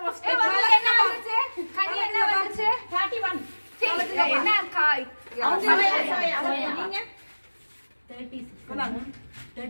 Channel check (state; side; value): inverted; both; correlation -1.00